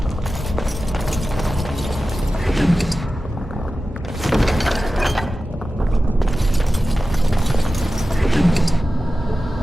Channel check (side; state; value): both; normal; correlation 0.94